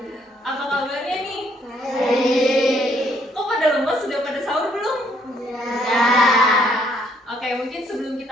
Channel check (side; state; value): both; normal; correlation 0.68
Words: Apa kabarnya nih? Baik. Kok pada lemas? Sudah pada sahur belum? Ya. Oke, mungkin sebelum